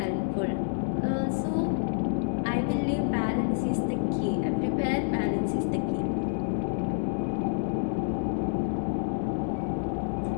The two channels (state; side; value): silent; right; digital silence